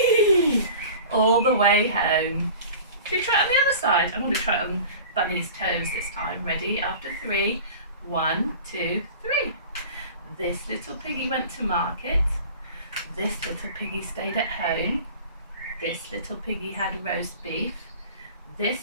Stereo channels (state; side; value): inverted; both; correlation -0.40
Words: all the way home. Should we try it on the other side? I'm going to try it on Bunny's toes this time. Ready? After 3. 1, 2, 3. This little piggy went to market. This little piggy stayed at home. This little piggy had roast beef. This